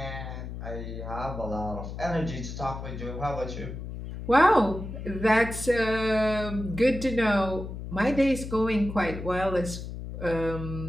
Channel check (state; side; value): noise; left; hum, 8 dB below the sound